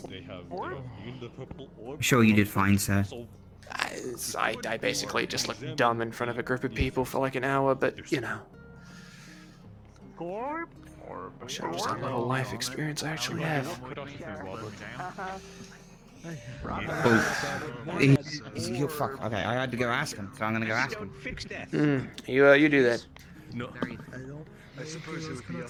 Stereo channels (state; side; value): identical; both; correlation 1.00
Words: They have the purple orb. Sure you did fine, sir. I basically just looked dumb in front of a group of people for like an hour, but you know. Shows how little life experience I actually have. You fuck. Okay, I had to go ask him, so I'm gonna go ask him. You do that. No. I suppose it would be